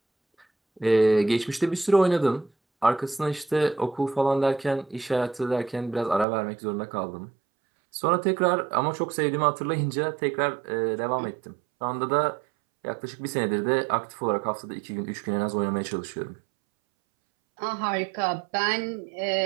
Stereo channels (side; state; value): left; drops out; at 6.2 s